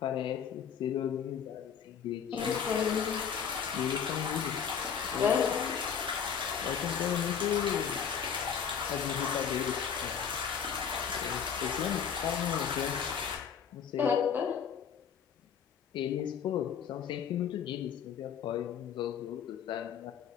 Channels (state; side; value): quieter; right; 7.5 dB